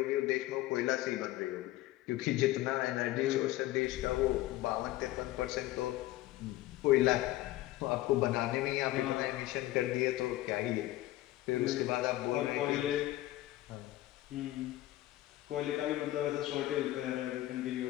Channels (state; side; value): quieter; right; 16.2 dB